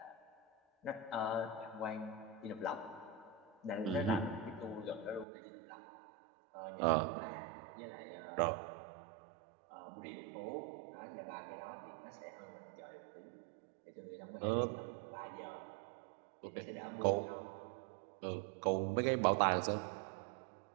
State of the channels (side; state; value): left; drops out; at 5.2 s